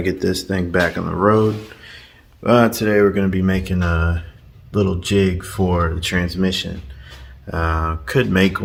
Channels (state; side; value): identical; both; correlation 1.00